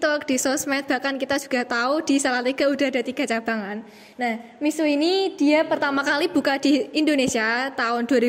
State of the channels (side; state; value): both; identical; correlation 1.00